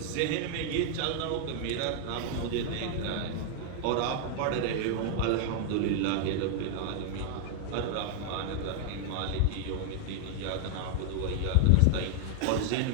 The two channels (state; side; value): different; both; correlation 0.00